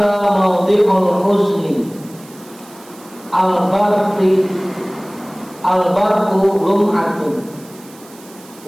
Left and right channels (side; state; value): right; noise; hiss, 23 dB below the sound